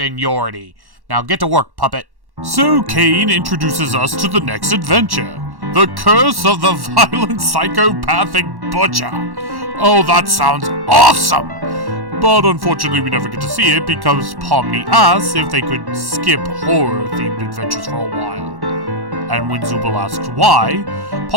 Now get to work, puppet. So Kane introduces us to the next adventure. The Curse of the Violent Psychopathic Butcher. Oh, that sounds awesome! But unfortunately we never get to see it because Pomni asks if they could skip horror-themed adventures for a while. And when Zooble asks why,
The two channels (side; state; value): left; late; 1.1 ms